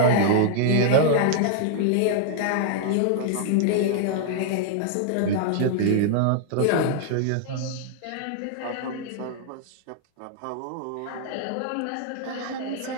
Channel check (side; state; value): both; different; correlation 0.00